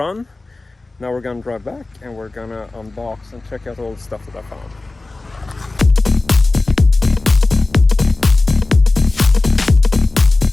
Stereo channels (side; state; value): right; quieter; 3.2 dB